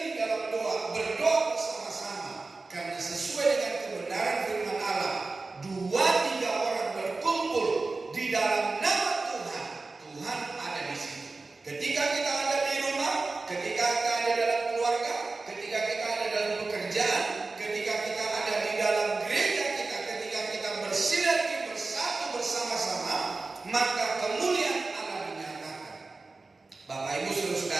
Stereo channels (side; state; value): left; quieter; 3.7 dB